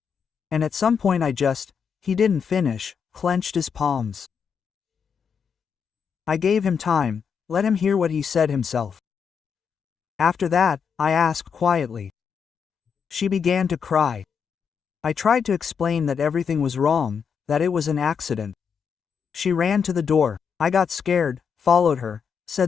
And at some point he didn't finish, clenched his palms. I gave him time, let him hear what he said himself. After that, I asked quietly. She began to cry. I tried to explain that everything was wrong, that it was an accident. She ran to the door. I got scared, followed her,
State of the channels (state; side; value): quieter; right; 6.7 dB